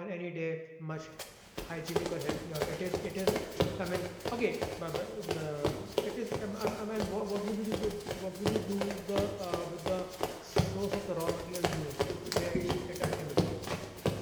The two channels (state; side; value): identical; both; correlation 1.00